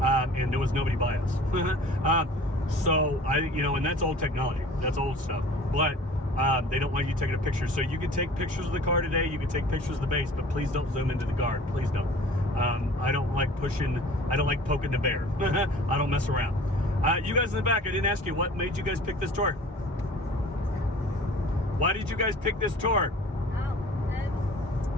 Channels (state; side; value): normal; both; correlation 0.46